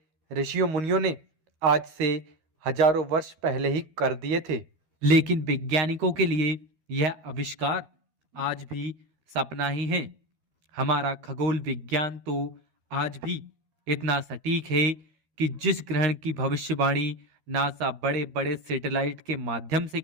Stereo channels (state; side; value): late; left; 13 ms